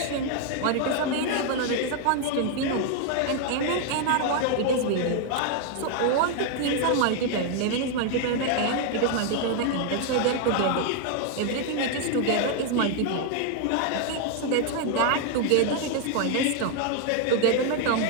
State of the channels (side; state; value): both; different; correlation 0.00